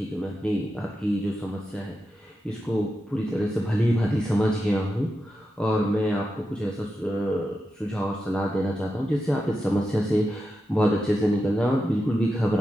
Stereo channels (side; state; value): both; normal; correlation 0.89